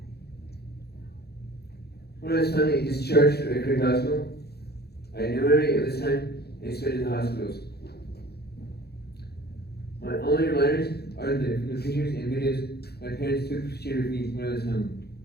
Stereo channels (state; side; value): late; right; 0.47 ms